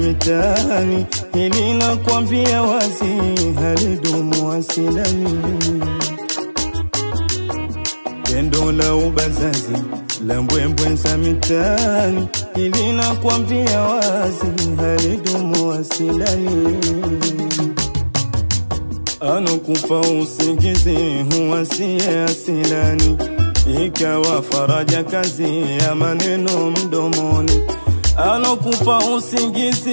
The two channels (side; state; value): both; inverted; correlation -1.00